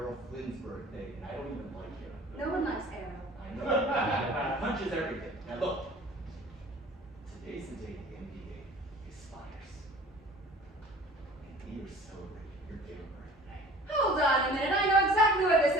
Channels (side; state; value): both; normal; correlation 0.46